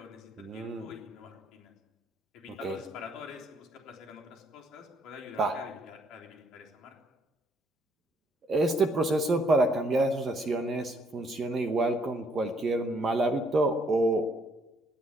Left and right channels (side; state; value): both; normal; correlation 0.68